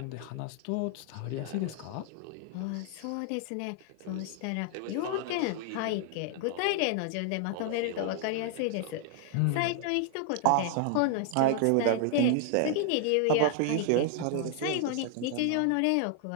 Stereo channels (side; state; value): both; different; correlation 0.00